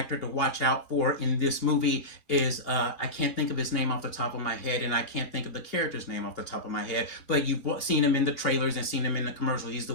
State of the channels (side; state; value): right; late; 2.9 ms